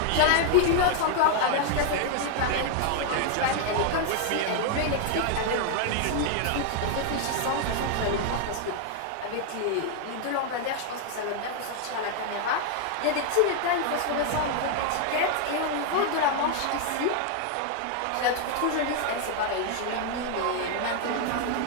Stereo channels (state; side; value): different; both; correlation 0.00